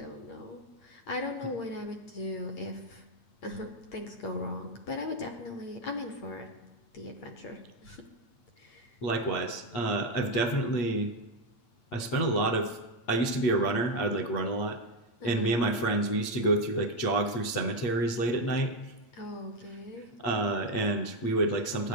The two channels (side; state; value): right; late; 8.3 ms